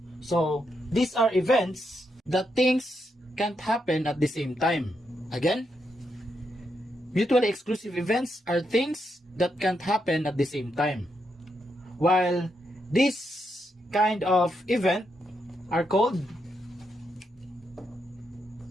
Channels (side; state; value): both; normal; correlation 0.81